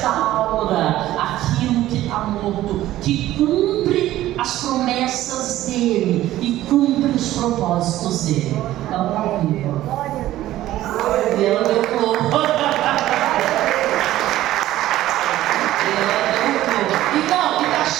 aquilo que está morto, que cumpre as promessas dele e cumpre os propósitos dele. Ela está viva. E ela deu flor. Então,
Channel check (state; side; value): quieter; left; 14.5 dB